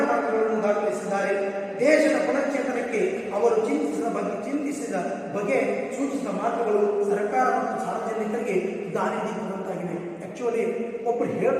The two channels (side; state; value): both; identical; correlation 1.00